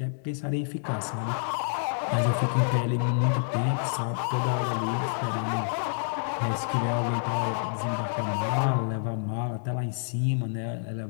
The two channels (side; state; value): right; silent; digital silence